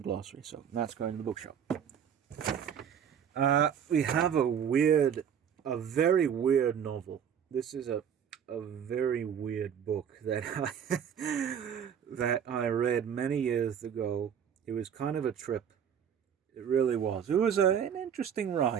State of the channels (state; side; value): quieter; left; 8.3 dB